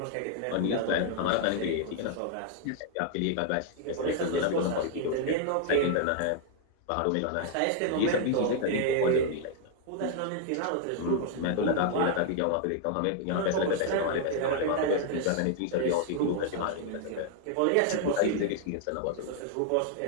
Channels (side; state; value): both; different; correlation 0.00